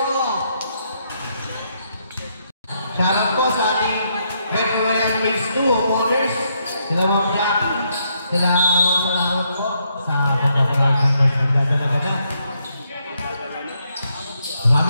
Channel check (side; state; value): both; inverted; correlation -0.76